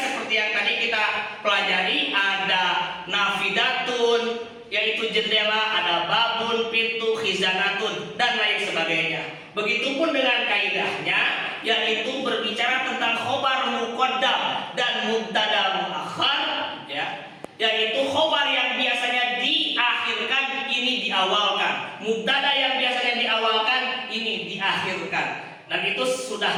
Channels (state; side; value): identical; both; correlation 1.00